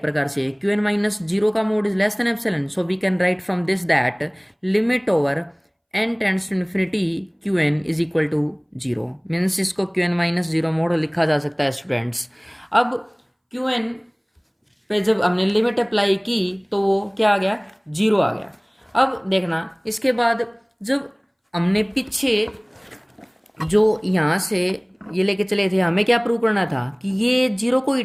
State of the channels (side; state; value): both; identical; correlation 1.00